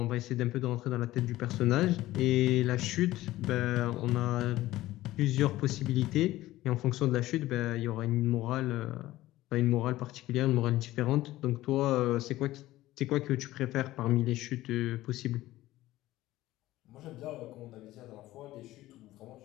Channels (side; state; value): right; quieter; 16.3 dB